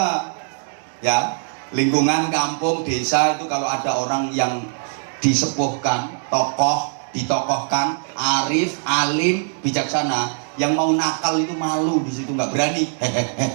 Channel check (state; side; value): silent; left; digital silence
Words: ya. Lingkungan kampung, desa itu kalau ada orang yang disepuhkan, tokoh, ditokohkan, arif, alim, bijaksana, yang mau nakal itu malu di situ, nggak berani.